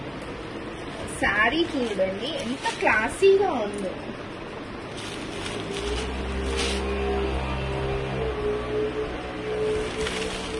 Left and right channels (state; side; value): identical; both; correlation 1.00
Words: శారీ చూడండి ఎంత క్లాసీగా ఉందో.